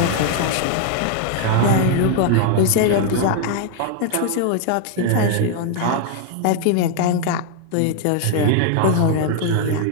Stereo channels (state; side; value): different; both; correlation 0.00